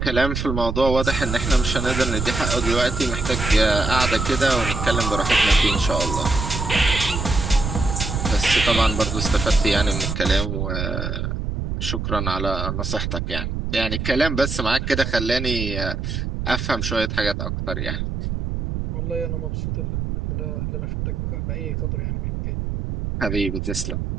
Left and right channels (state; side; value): noise; right; rumble, 3 dB below the sound